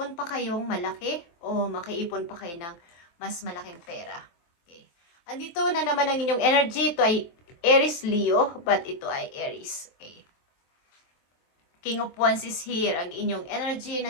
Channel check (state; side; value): late; right; 23 ms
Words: pa kayong malaki o makaipon pa kayo ng mas malaking pera. Okay. Andito na naman ang inyong energy. Ito ay Aries Leo, but ito ay Aries. Okay. King of Wands is here. Ang inyong energy